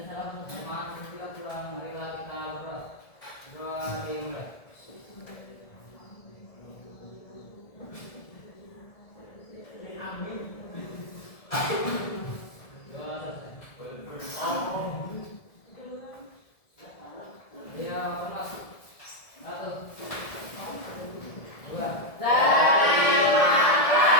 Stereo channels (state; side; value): late; right; 1.7 ms